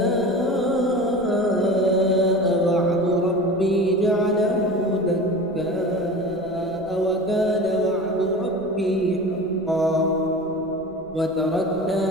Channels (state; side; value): noise; left; rumble, 27 dB below the sound